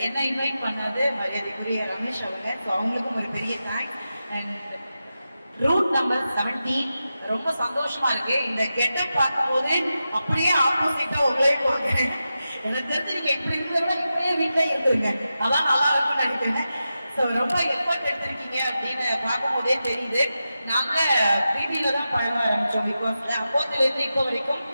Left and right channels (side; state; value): both; inverted; correlation -0.91